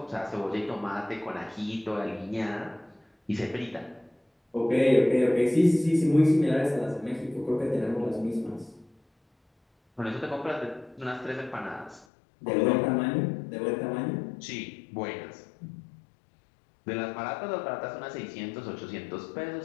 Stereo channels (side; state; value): right; drops out; at 12.1 s